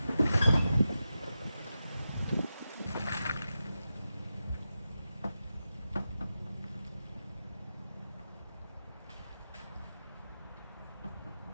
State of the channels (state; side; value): inverted; both; correlation -0.91